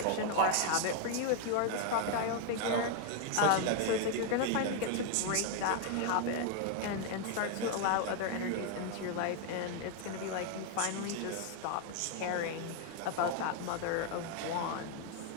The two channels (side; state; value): both; different; correlation 0.00